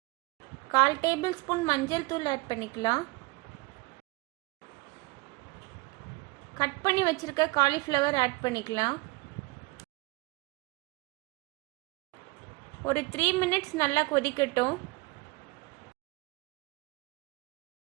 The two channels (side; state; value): left; quieter; 25.1 dB